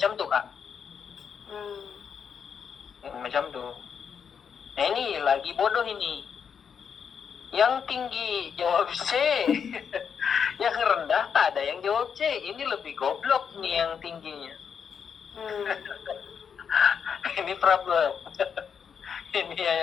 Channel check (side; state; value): right; quieter; 7.0 dB